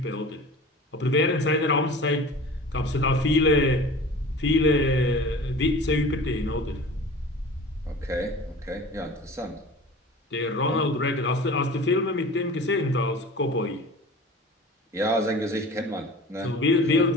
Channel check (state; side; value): normal; both; correlation 0.39